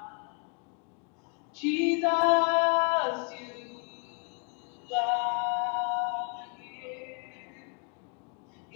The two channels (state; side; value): quieter; right; 35.4 dB